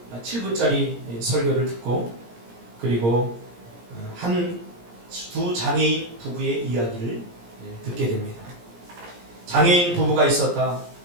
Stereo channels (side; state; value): left; late; 17 ms